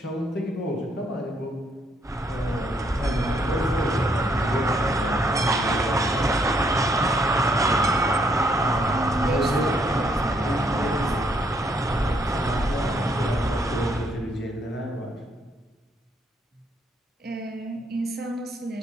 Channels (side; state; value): both; normal; correlation 0.71